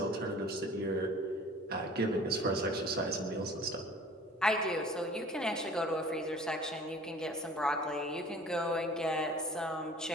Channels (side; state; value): both; normal; correlation 0.47